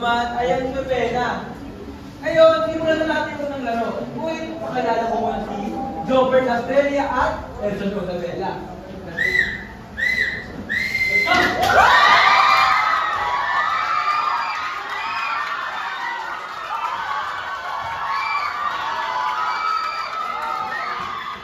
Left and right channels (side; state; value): both; identical; correlation 1.00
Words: ay ang Novena. Ngayon, simulan na natin unang laro. Kung pakilala ko muna si Jobert Australia at Edson Codabella.